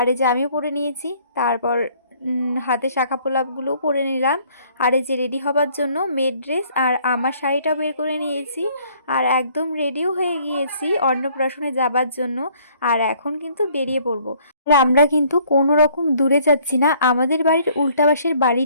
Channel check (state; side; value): inverted; both; correlation -0.60